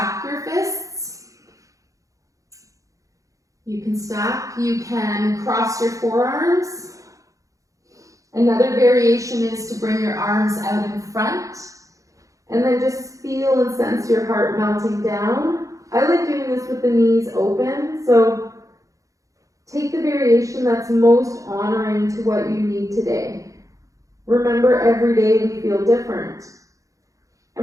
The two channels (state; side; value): late; left; 0.16 ms